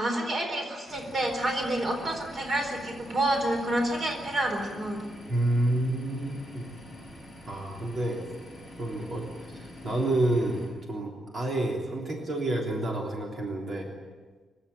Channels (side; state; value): both; normal; correlation 0.80